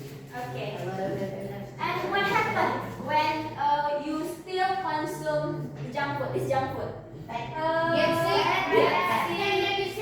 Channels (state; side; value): identical; both; correlation 1.00